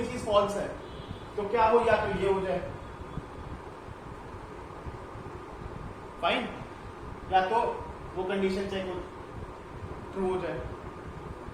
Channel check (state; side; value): identical; both; correlation 1.00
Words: चीज फॉल्स है, तो क्या हो, या तो ये हो जाए फाइन, या तो वो कंडीशन चेक हो ट्रू हो जाए।